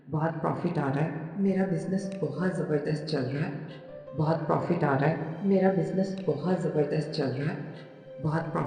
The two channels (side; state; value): both; identical; correlation 1.00